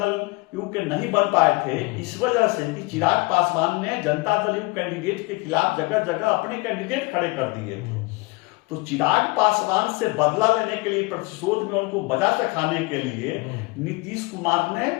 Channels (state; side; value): quieter; right; 25.8 dB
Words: यू के नहीं बन पाए थे, इस वजह से कि चिराग पासवान ने जनता दल यू कैंडिडेट के खिलाफ जगह जगह अपने कैंडिडेट खड़े कर दिए थे। तो चिराग पासवान से बदला लेने के लिए, प्रतिशोध में उनको बजा से खाने के लिए नीतीश कुमार ने